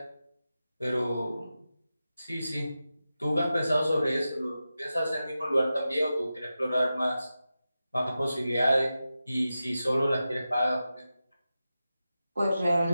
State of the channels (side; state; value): both; inverted; correlation -0.92